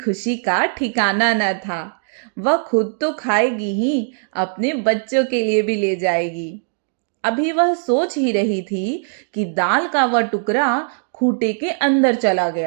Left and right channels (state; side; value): silent; left; digital silence